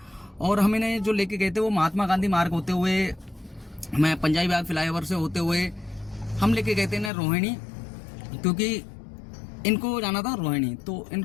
और हम इन्हें जो लेके गए थे वो महात्मा गांधी मार्ग होते हुए, मैं पंजाबी बाग फ्लाईओवर से होते हुए हम लेके गए थे इन्हें रोहिणी। क्योंकि इनको जाना था रोहिणी। तो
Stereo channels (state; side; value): drops out; right; at 7.1 s